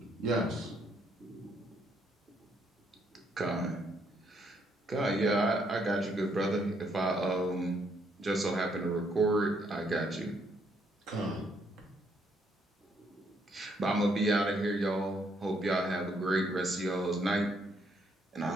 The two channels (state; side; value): normal; both; correlation 0.72